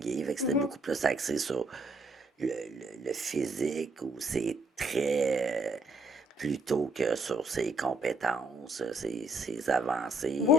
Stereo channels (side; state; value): both; normal; correlation 0.68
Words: Fait que c'était mhm. beaucoup plus axé sur le physique ou ses traits plutôt que sur ses compétences, ses avancées, Oui,